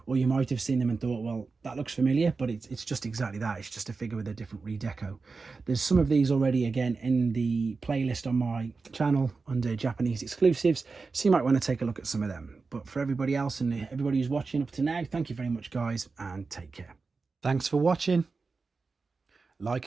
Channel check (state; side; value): quieter; left; 4.3 dB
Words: or you might have seen them and thought, well, that looks familiar, but it's just exactly that. It's just a figure with a different redeco. There's some of these already, again, in the playlist on my channel under Japanese exclusives, so you might want to take a look at some of them. But for everybody else and everybody who's watching up to now, thank you very much, guys, and take care. Thanks for watching.